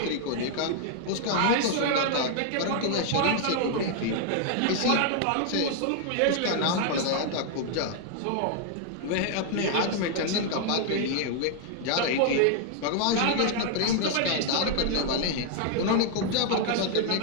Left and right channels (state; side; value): different; both; correlation 0.00